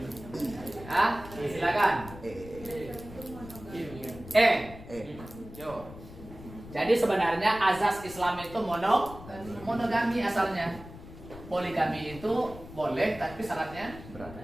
Silakan. Jadi sebenarnya azas Islam itu monogami asalnya. Poligami itu boleh tapi syaratnya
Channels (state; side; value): noise; left; rumble, 15 dB below the sound